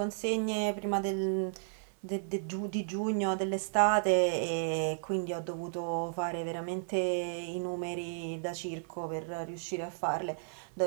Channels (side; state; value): left; silent; digital silence